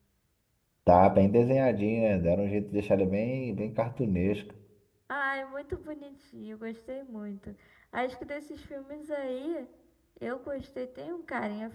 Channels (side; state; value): both; identical; correlation 1.00